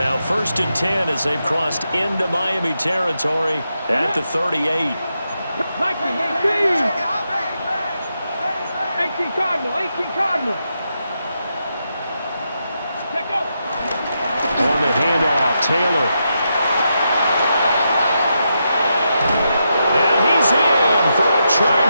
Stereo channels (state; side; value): inverted; both; correlation -0.84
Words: 1st and 10 as they've crossed into Miami territory at the 38. 18 Cardinal, 18 Cardinal. Let go. On the handoff, Taylor.